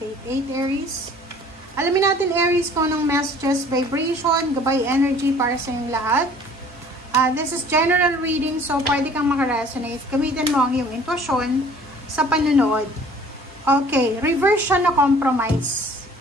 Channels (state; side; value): normal; both; correlation 0.52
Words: Aries. Alamin natin Aries kung anong messages, vibration, gabay energy para sa inyong lahat. This is general reading, so pwede kang makaresonate. Gamitin mo ang iyong intuition sa panunood. Okay, reverse siya na compromise.